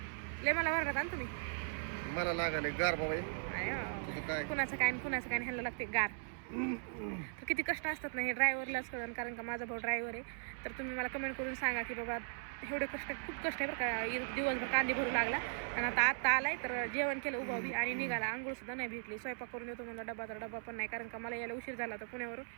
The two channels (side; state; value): left; silent; 52 dB below the other